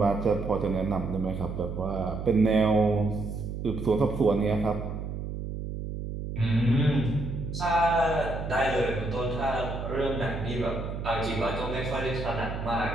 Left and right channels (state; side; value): noise; right; hum, 6 dB below the sound